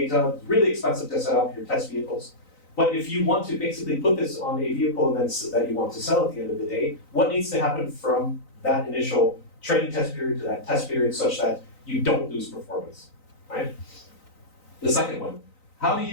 it's really expensive to set up your test vehicles. But if you want to basically put this on a vehicle and then that you want to sell at the end of the day, what needs to happen from that initial training test period to that test period such that you don't lose performance, right? The second one, how do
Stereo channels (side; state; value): right; late; 3.9 ms